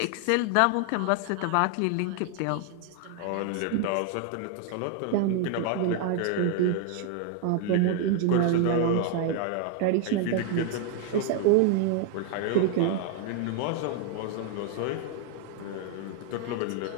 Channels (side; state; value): both; different; correlation 0.01